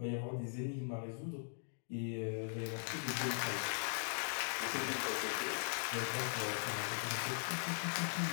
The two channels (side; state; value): right; silent; digital silence